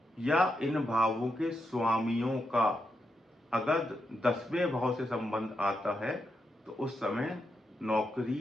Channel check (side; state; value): both; normal; correlation 0.84